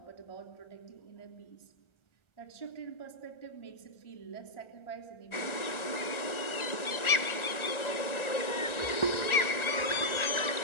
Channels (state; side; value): late; right; 1.4 ms